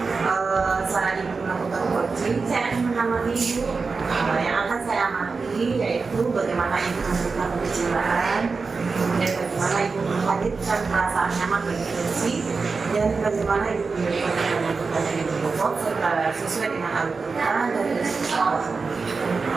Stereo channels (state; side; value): quieter; left; 4.5 dB